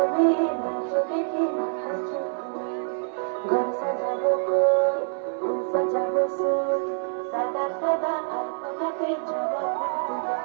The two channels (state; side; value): silent; left; 61 dB below the other